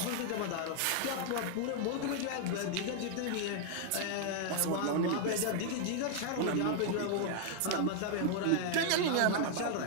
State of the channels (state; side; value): different; both; correlation 0.00